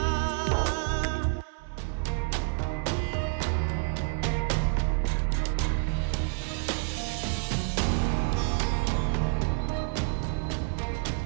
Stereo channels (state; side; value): silent; left; 59 dB below the other